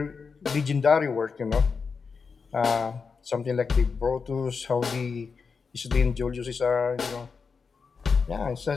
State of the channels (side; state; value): right; quieter; 5.3 dB